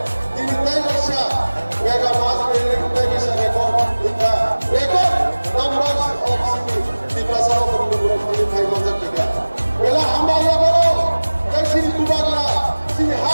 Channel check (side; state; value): both; inverted; correlation -1.00